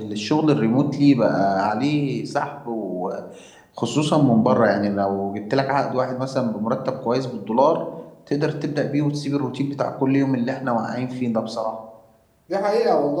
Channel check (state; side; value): identical; both; correlation 1.00